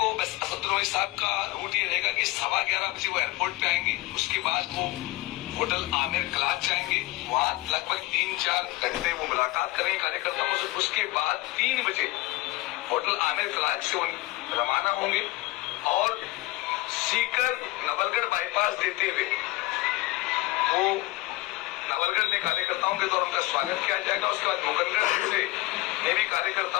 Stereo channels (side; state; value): right; quieter; 20.3 dB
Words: बस असदुद्दीन ओवैसी साहब का रूट ये रहेगा कि 11:15 बजे वो एयरपोर्ट पे आएंगे। उसके बाद वो होटल आमिर क्लास जाएंगे, वहां लगभग 3-4 घंटे वो मुलाकात करेंगे कार्यकर्ताओं से। उसके बाद 3 बजे होटल आमिर क्लास से वो रवाना होंगे और सीकर नवलगढ़ बाईपास देते हुए वो नवलगढ़ में कार्यकर्ताओं के द्वारा उनका स्वागत किया जाएगा। उसके बाद मुकंदगढ़ से भी